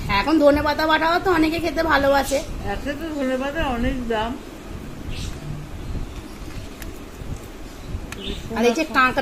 এখন ধনেপাতা বাটাও তো অনেকে খেতে ভালোবাসে। একটা তো ধনেপাতা অনেক দাম। আর এই যে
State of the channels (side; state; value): both; identical; correlation 1.00